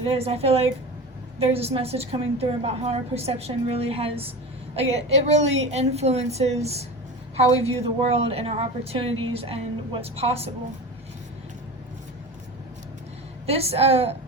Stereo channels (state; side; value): normal; both; correlation 0.29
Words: is. I feel like there's this message coming through about how our perception really has, it really influences how we view the world and our opportunities and what's possible. This